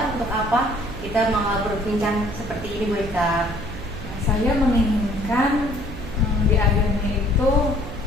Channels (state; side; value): noise; right; hum, 12 dB below the sound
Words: untuk apa? Kita mau berbincang seperti ini Bu Eka. Nah, saya menginginkan di akhirnya itu